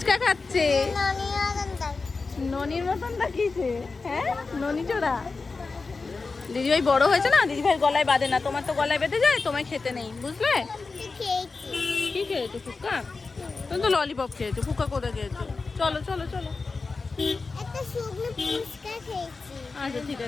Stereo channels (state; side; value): quieter; right; 4.1 dB